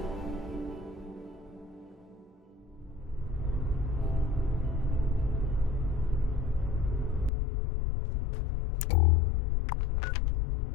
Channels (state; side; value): drops out; right; at 7.3 s